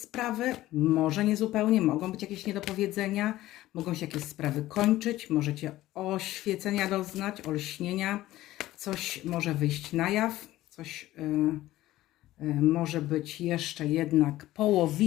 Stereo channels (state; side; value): quieter; right; 15.7 dB